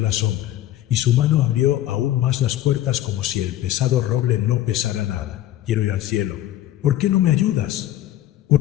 la sombra, y su mano abrió aún más las puertas como si el pesado roble no pesara nada. Quiero ir al cielo. ¿Por qué no me ayudas?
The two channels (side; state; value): right; quieter; 13.6 dB